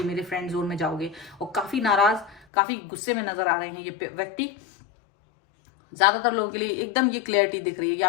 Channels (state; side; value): drops out; right; at 2.5 s